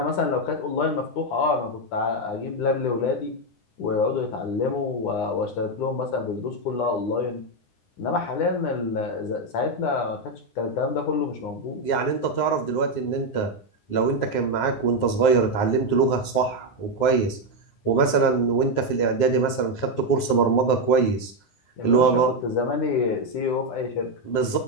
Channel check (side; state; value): right; late; 9.6 ms